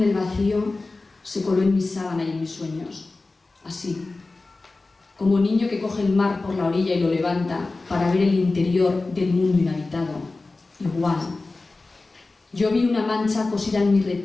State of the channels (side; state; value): right; quieter; 3.4 dB